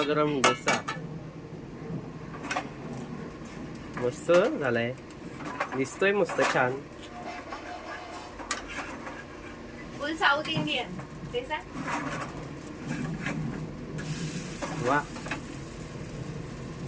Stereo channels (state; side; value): identical; both; correlation 1.00